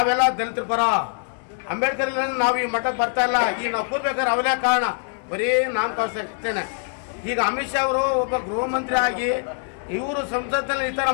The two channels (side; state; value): right; silent; 55 dB below the other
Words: ದಲಿತರ ಪರ, ಅಂಬೇಡ್ಕರ್ ನಾವು ಈ ಮಟ್ಟಕ್ಕೆ ಬರ್ತಾ ಇಲ್ಲ. ಈಗ ನಾವು ಕೂರ್ಬೇಕಾದ್ರೆ ಅವರೇ ಕಾರಣ, ಬರೀ ನಾನು ತೋರಿಸ್ತೇನೆ. ಈಗ ಅಮಿತ್ ಶಾ ಅವರು ಒಬ್ಬ ಗೃಹ ಮಂತ್ರಿ ಆಗಿ ಇವರು ಸಂಸತ್ತಲ್ಲಿ ಈ ಥರ